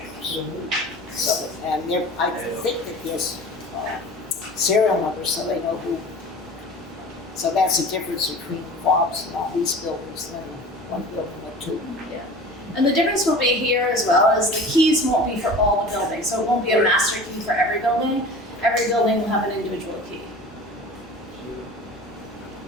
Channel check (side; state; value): both; normal; correlation 0.39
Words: So, and I think that there's serial numbers, so they know who. So that's the difference between fobs in all these buildings than one building with 2. Yeah. And the difference will be here as well is the keys won't be for all the buildings. So it won't be a master key for every building. Every building will have an individual key.